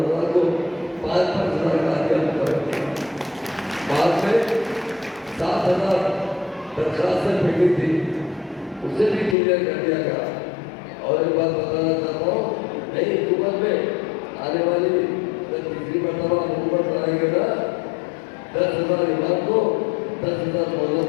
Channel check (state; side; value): drops out; right; at 9.3 s